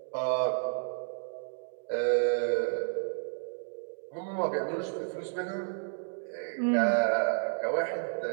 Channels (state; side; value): silent; left; digital silence